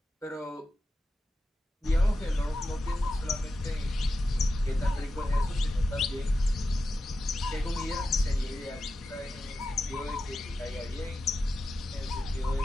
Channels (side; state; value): both; normal; correlation 0.91